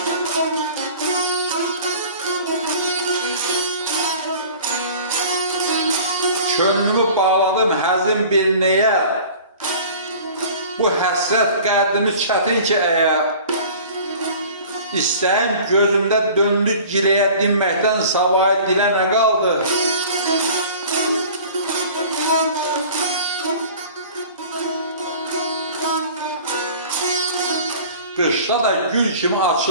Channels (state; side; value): inverted; both; correlation -0.44